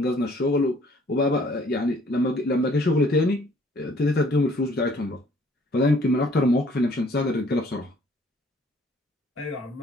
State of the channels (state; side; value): normal; both; correlation 0.59